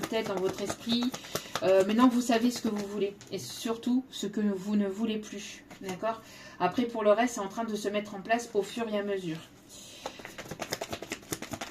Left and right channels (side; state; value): both; identical; correlation 1.00